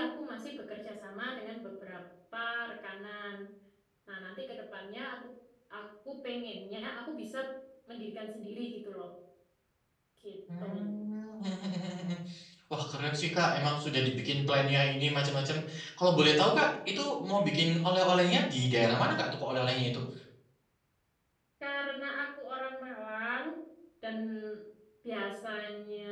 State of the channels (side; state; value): both; identical; correlation 1.00